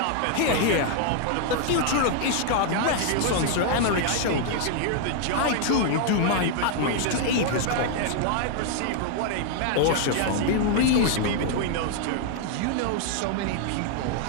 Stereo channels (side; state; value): both; different; correlation 0.00